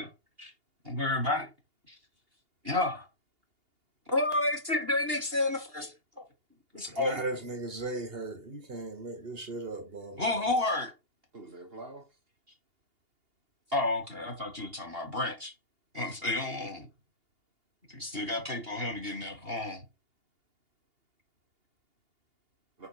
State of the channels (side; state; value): left; late; 2.8 ms